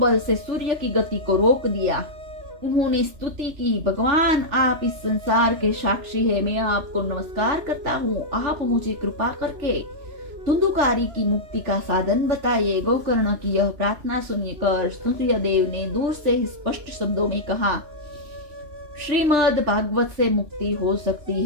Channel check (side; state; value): left; late; 3.4 ms